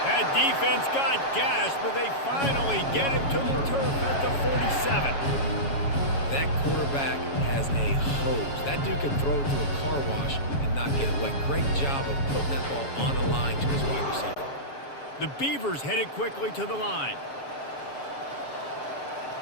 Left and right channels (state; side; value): late; right; 7.2 ms